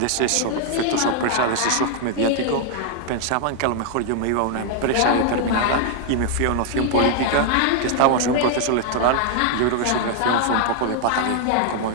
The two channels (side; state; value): both; different; correlation 0.00